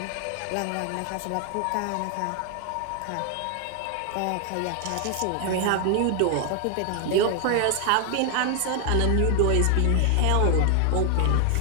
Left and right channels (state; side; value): different; both; correlation 0.00